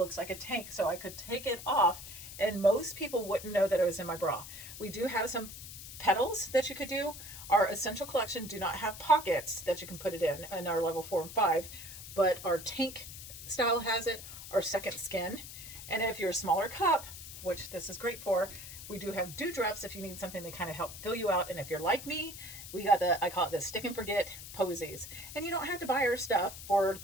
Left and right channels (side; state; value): left; noise; hiss, 12 dB below the sound